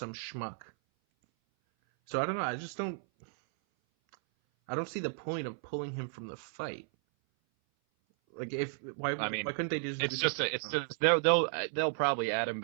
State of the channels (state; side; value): silent; left; 55 dB below the other